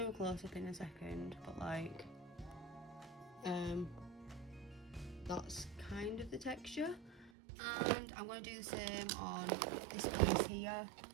a close-up in a second, but like, that's kind of the texture. And I'm going to do the same on this piece here,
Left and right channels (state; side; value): drops out; left; at 7.3 s